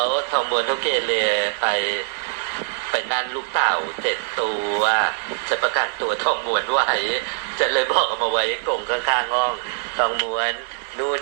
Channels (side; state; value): left; silent; digital silence